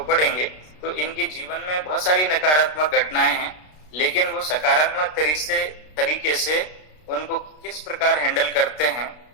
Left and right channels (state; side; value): late; right; 33 ms